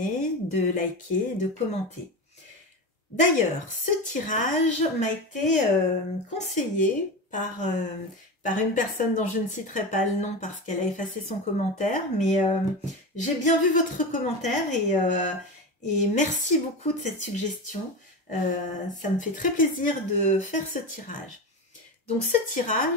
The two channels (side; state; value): both; normal; correlation 0.22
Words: de liker, de commenter. D'ailleurs, ce tirage m'a été conseillé par une personne dont je ne citerai pas le nom parce qu'elle a effacé son commentaire, mais j'ai bien vu votre commentaire et merci beaucoup de cette suggestion. Ça me fait très plaisir de faire ce tirage. Donc ce